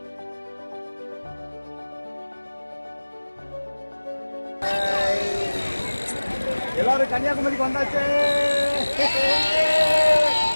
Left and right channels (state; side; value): inverted; both; correlation -1.00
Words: எல்லாரும் கன்னியாகுமரிக்கு வந்தாச்சு,